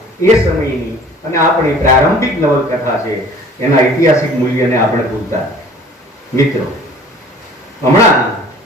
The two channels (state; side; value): normal; both; correlation 0.49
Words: એ સમયની અને આપણી પ્રારંભિક નવલકથા છે, એના ઐતિહાસિક મૂલ્યને આપણે ભૂલતા. મિત્રો, હમણાં